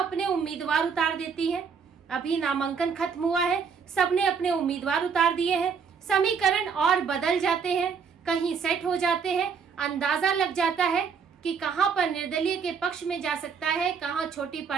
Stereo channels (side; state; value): left; quieter; 6.1 dB